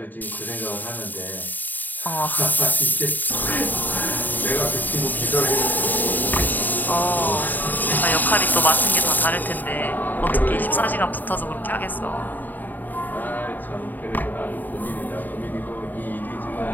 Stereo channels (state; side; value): late; right; 0.087 ms